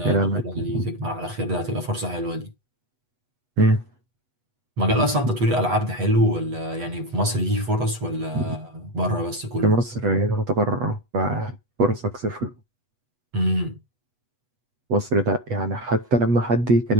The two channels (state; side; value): late; left; 8.2 ms